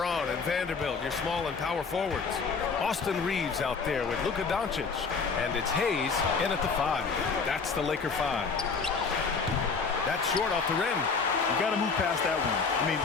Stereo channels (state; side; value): quieter; right; 5.0 dB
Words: and Vanderbilt, your small and power forwards. Austin Reeves out there with Luka Doncic. And it's Hayes in at the 5. That's the Laker 5. That's short off the rim. You got to move past that one. I mean,